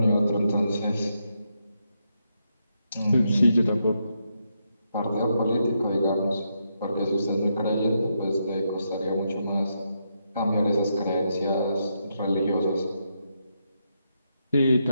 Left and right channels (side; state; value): both; inverted; correlation -0.81